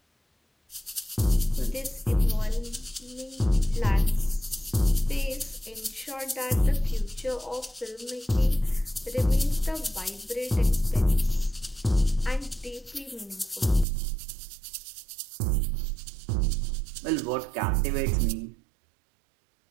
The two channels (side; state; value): left; drops out; at 13.9 s